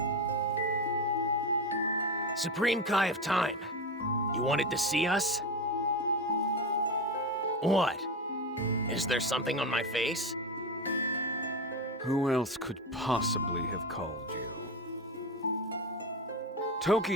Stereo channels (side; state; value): both; normal; correlation 0.19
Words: Supreme Kai of Time, you wanted to see us? What? Is there something on my face? Who else could possibly have called you?